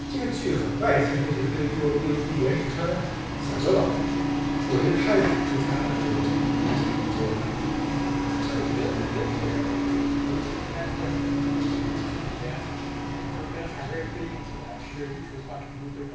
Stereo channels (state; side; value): identical; both; correlation 1.00